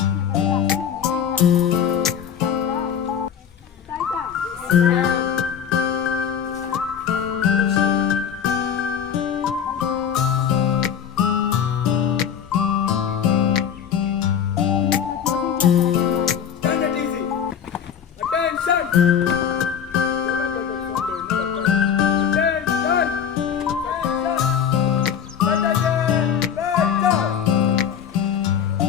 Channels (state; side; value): quieter; right; 8.1 dB